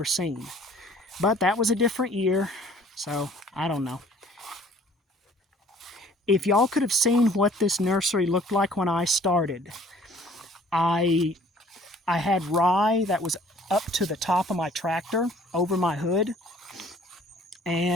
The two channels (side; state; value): both; normal; correlation 0.55